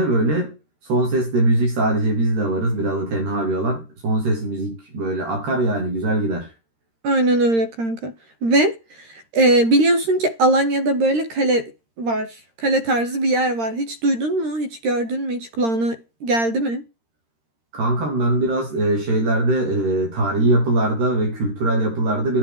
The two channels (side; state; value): left; late; 13 ms